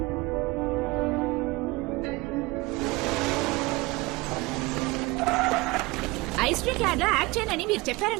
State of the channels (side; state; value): left; quieter; 23.2 dB